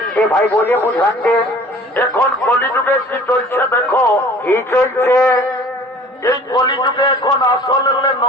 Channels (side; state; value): both; normal; correlation 0.48